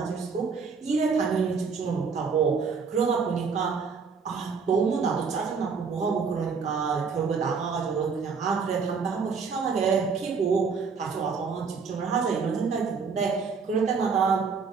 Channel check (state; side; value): quieter; left; 5.4 dB